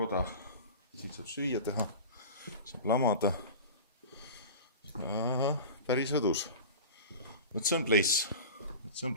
Siin saab süüa teha, saab lamada. Ja, päris õdus. Vot see on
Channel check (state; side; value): inverted; both; correlation -0.33